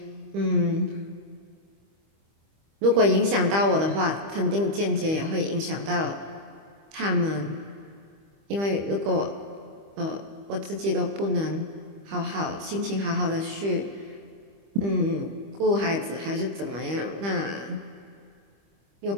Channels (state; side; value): late; left; 25 ms